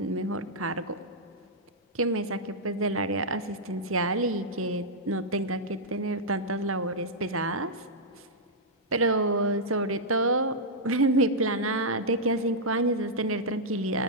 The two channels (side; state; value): both; normal; correlation -0.07